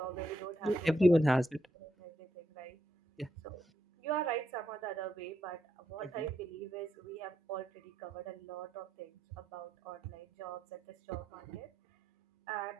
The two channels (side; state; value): both; normal; correlation 0.79